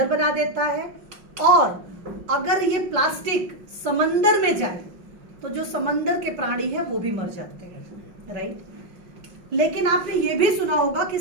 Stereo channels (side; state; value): left; late; 5.6 ms